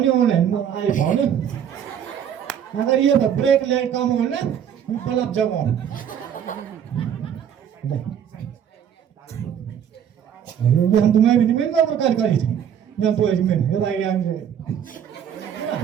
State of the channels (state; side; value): quieter; left; 8.9 dB